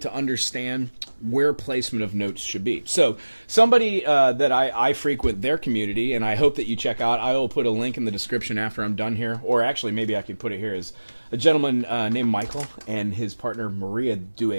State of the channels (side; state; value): both; inverted; correlation -1.00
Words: understand where placement of notes should be. So somebody that I frequent their community, and I hope that you check out, I will put a link in the description after I'm done here, or actually maybe I could put it here, is a gentleman named Michael and his partner Maria do